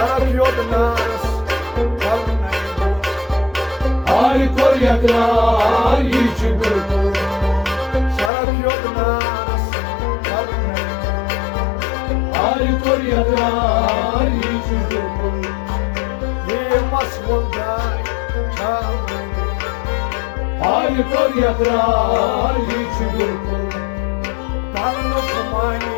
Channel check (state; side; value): drops out; right; at 8.3 s